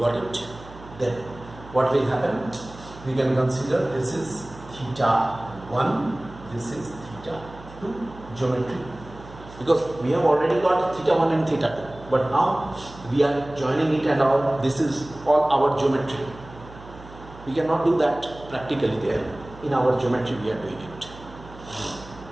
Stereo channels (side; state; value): right; noise; hum, 18 dB below the sound